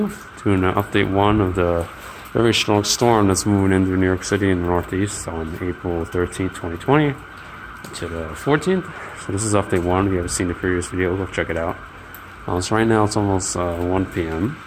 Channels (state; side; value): identical; both; correlation 1.00